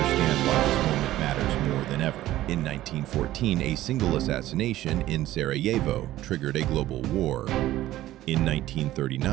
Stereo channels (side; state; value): left; quieter; 14.8 dB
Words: why this moment matters more than ever. In 1914, a single assassination in Sarajevo triggered a global war. In